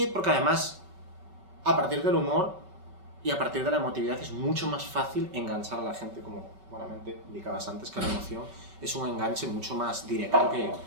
porque además, a partir del humor y a partir de la emotividad es mucho más fácil enganchar a la gente, como buenamente indicabas antes, que la emoción es un enganche mucho más directo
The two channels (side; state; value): left; late; 5.3 ms